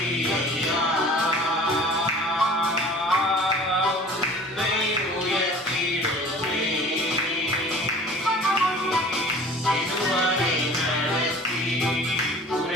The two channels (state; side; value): normal; both; correlation 0.45